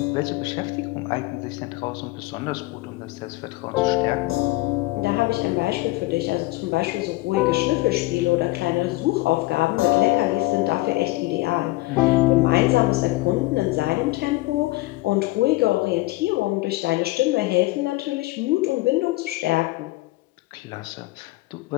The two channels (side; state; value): right; quieter; 20.1 dB